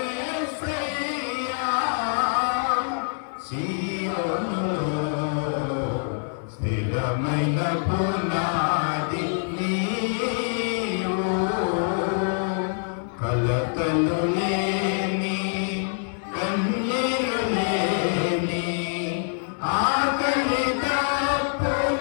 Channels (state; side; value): silent; right; 62 dB below the other